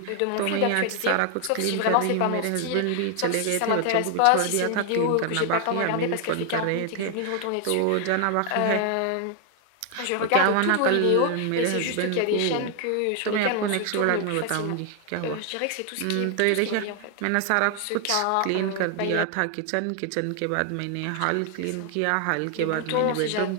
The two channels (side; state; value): both; different; correlation 0.00